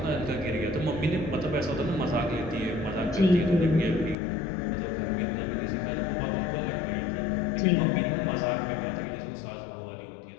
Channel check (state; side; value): drops out; right; at 4.2 s